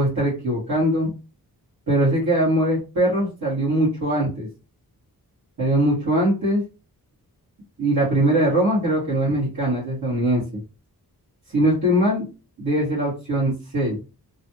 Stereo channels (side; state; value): both; normal; correlation 0.37